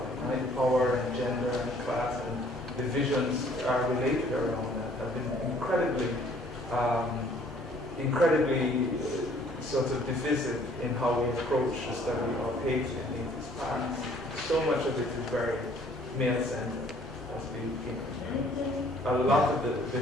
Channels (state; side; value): normal; both; correlation 0.59